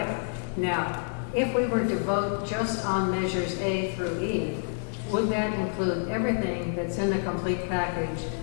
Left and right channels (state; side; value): silent; right; digital silence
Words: Now, if we were to vote just on measures A through E, would that include everything that's in the complete package?